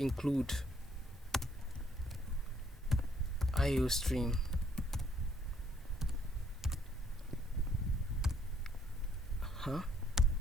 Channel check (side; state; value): both; normal; correlation 0.66